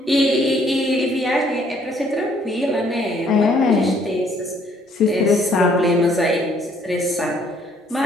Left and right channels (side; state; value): both; normal; correlation 0.65